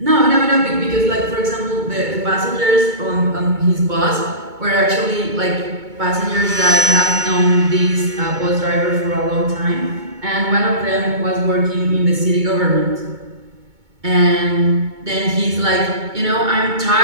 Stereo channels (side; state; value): left; late; 2.2 ms